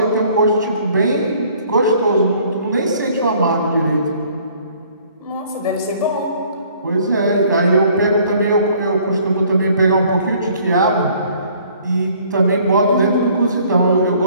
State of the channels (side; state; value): both; inverted; correlation -0.58